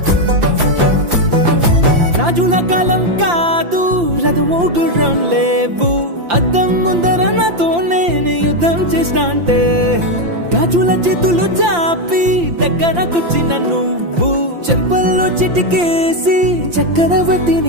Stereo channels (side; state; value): left; late; 5.8 ms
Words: రాజుల కాలం కాదు రథము గుర్రం లేవు అద్దం ముందర నాతో నేను యుద్ధం చేస్తా అంటే గాజుల చేతులు చాపి దగ్గరకొచ్చిన నువ్వు చెంపల్లో చిటికేసి